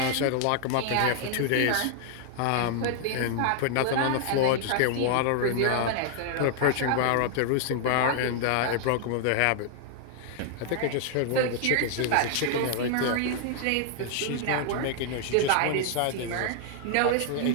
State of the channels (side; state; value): both; different; correlation 0.00